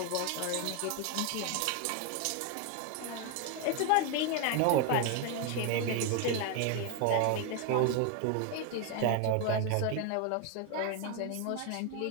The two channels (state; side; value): different; both; correlation 0.01